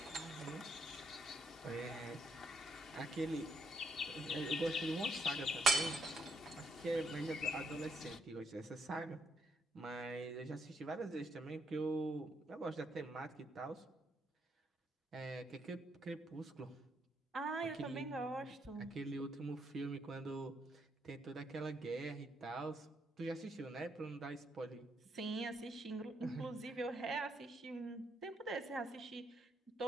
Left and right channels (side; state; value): both; normal; correlation 0.75